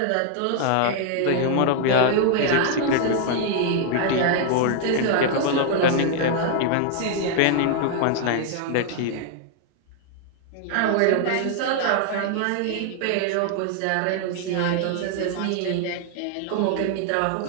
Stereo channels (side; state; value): both; different; correlation 0.00